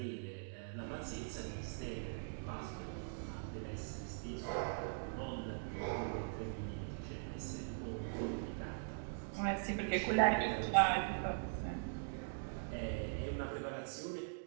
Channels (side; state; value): left; silent; digital silence